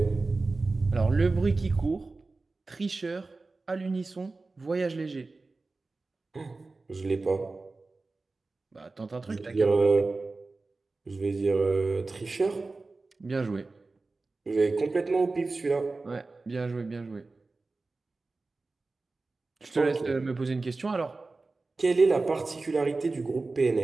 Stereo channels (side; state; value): left; quieter; 3.6 dB